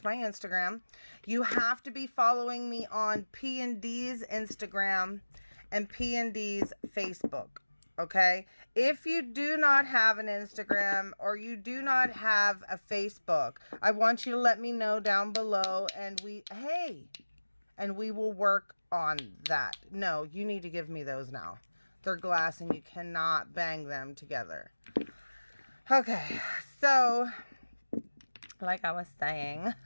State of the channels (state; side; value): inverted; both; correlation -1.00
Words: my Instagram. You have to be following me on P&D's Instagram and P&D's Facebook. Okay? If you do not have an Instagram or you do not have a Facebook, I want you to let me know down below, and we will work on that. No, you need to give me those now. They're glass and you cannot bang them together. Okay, so like I was saying,